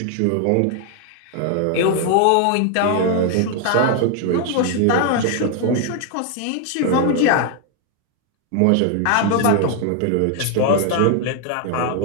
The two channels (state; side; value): different; both; correlation 0.00